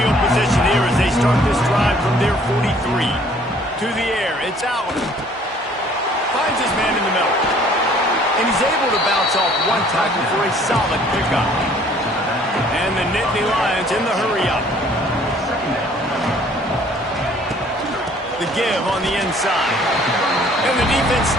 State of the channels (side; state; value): both; normal; correlation 0.57